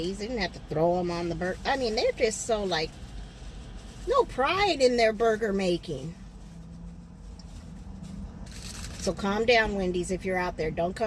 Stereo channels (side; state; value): both; identical; correlation 1.00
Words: They didn't have to throw them on the burger. I mean, they're just so, like, no pride in their burger making. So calm down, Wendy's, if you're out there. Don't